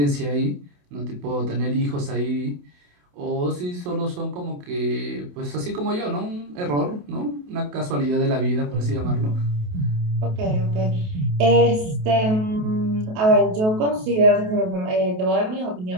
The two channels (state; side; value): late; left; 28 ms